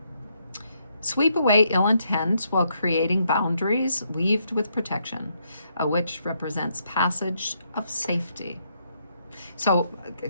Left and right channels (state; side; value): inverted; both; correlation -0.76